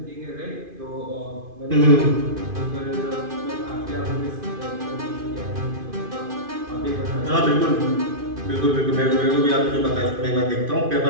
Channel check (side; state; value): left; late; 2.5 ms